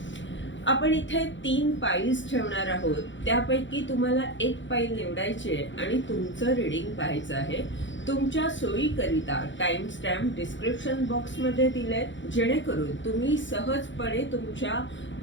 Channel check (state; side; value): late; right; 0.54 ms